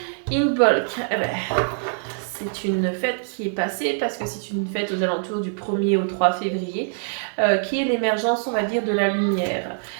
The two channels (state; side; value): silent; left; digital silence